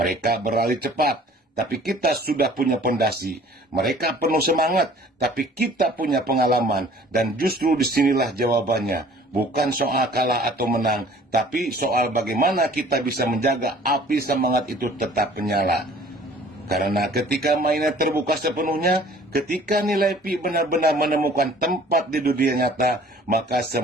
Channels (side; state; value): both; normal; correlation 0.51